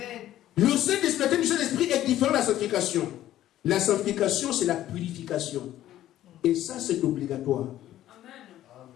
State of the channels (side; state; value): right; quieter; 13.1 dB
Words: Le Saint-Esprit du Saint-Esprit est différent de la sanctification. La sanctification, c'est la purification. Et ça, c'est obligatoire.